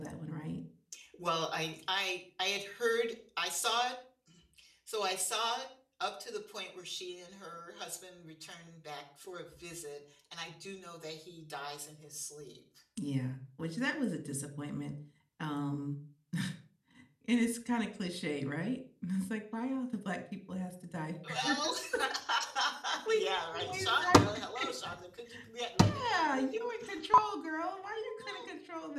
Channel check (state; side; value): identical; both; correlation 1.00